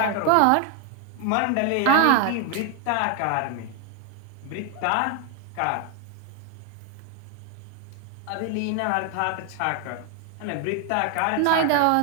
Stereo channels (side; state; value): both; different; correlation 0.01